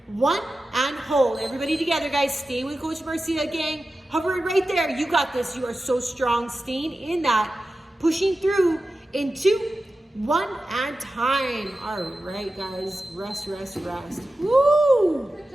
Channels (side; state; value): both; normal; correlation 0.93